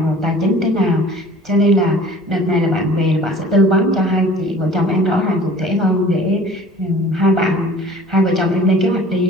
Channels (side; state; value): both; normal; correlation 0.46